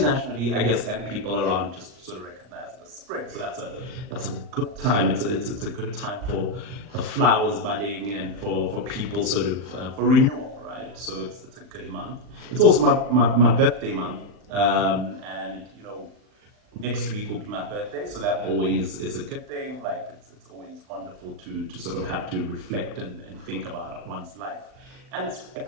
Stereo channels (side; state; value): left; late; 39 ms